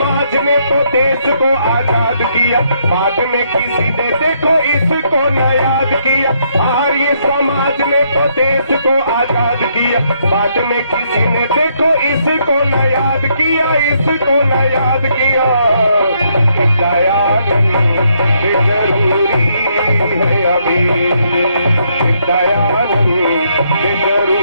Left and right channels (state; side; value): inverted; both; correlation -0.73